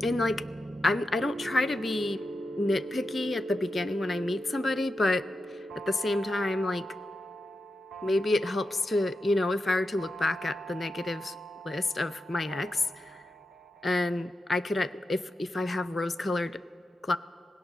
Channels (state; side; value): normal; both; correlation 0.89